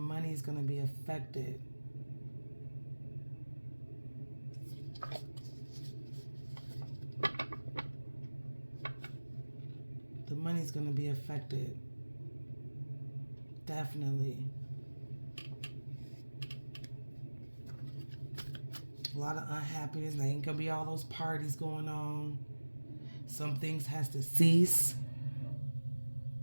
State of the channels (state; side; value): inverted; both; correlation -1.00